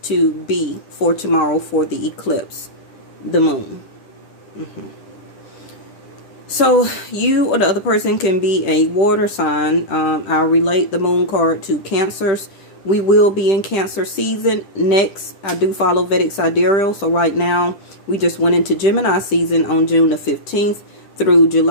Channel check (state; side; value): late; right; 10 ms